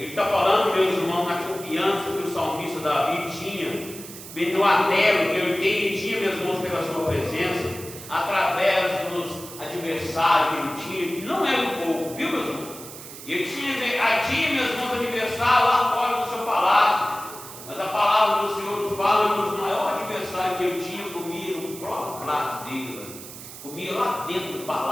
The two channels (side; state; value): right; noise; hiss, 14 dB below the sound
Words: está falando, meus irmãos, na confiança que o salmista Davi tinha, no anelo que ele tinha, meus irmãos, pela sua presença, através dos adversários que ele tinha, que não era um pouco, viu, meus irmãos? Ele tinha, meus irmãos, adversário lá fora do seu palácio, mas a palavra do Senhor nos fala que o maior adversário que ele tinha comia no próprio prato dele, comia lá dentro do